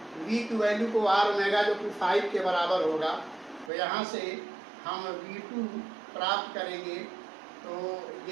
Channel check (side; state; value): left; drops out; at 3.7 s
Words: v की वैल्यू को आर ओमेगा जो कि 5 के बराबर होगा, तो यहाँ से हम v2 प्राप्त करेंगे। तो